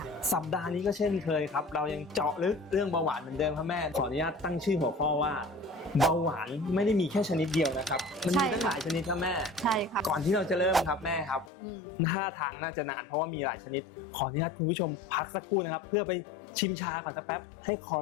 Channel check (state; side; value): drops out; right; at 11.5 s